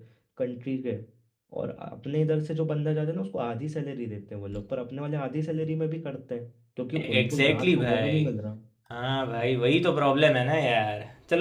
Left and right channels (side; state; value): both; identical; correlation 1.00